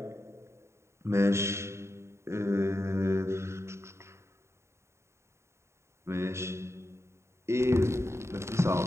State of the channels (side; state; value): left; late; 0.13 ms